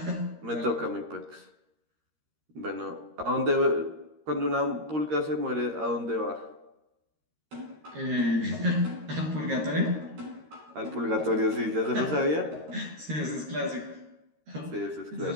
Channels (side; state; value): left; late; 13 ms